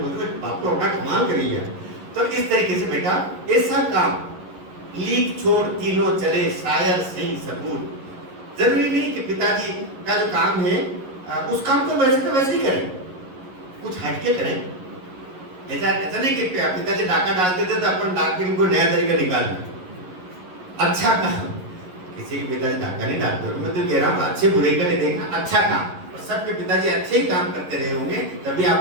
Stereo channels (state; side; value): late; left; 11 ms